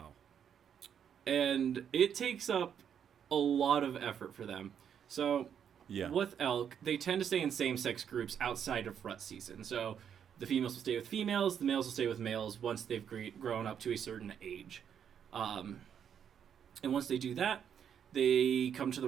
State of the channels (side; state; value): left; quieter; 8.3 dB